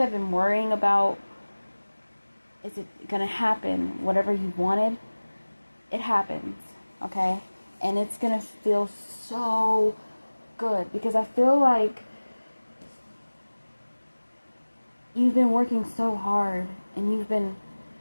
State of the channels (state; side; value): inverted; both; correlation -1.00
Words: been worrying about, is it going to happen, whatever you wanted, it happens, okay? And it's going to feel so good, because I feel like you've been working so hard, and you've been